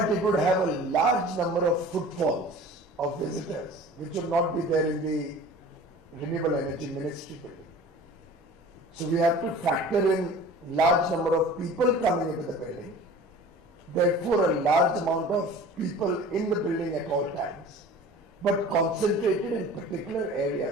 it would have a large number of footfalls of visitors, which would not be there in the Renewable Energy Ministry building. So we have to factor in large number of people coming into the building, therefore a large amount of people in the building at all times, but concentrated in particular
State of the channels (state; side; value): normal; both; correlation 0.43